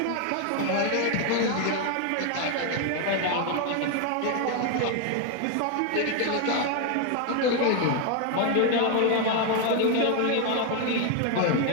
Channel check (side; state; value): both; different; correlation 0.01